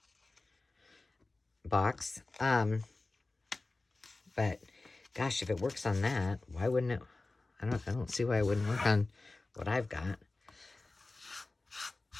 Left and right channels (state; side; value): quieter; right; 3.3 dB